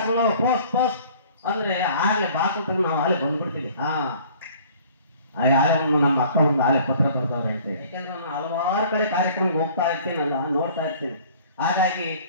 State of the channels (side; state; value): both; inverted; correlation -0.51